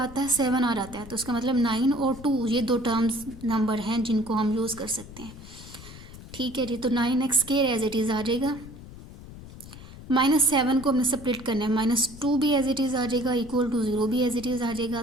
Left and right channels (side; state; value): left; noise; rumble, 16 dB below the sound